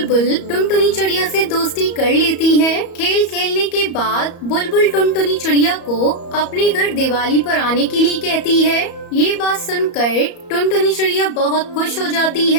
टुनटुनी चिड़िया से दोस्ती कर लेती है। खेल खेलने के बाद बुलबुल टुनटुनी चिड़िया को अपने घर दिवाली पर आने के लिए कहती है। ये बात सुनकर टुनटुनी चिड़िया बहुत खुश हो जाती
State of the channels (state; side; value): late; right; 34 ms